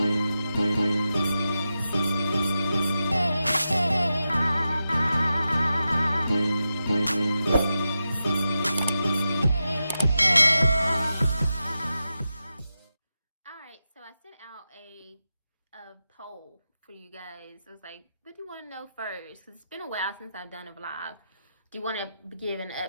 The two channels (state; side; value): inverted; both; correlation -0.90